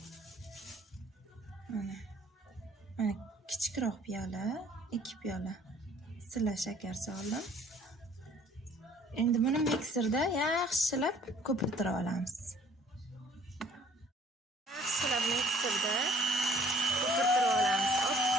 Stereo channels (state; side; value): normal; both; correlation 0.56